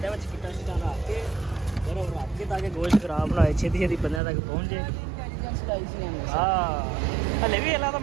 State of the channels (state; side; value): drops out; left; at 4.2 s